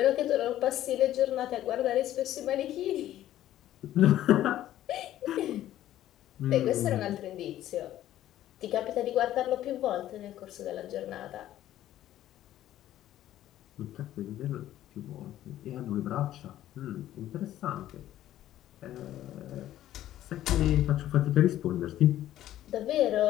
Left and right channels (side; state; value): right; quieter; 13.0 dB